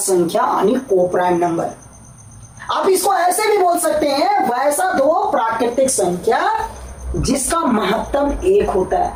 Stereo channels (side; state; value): both; identical; correlation 1.00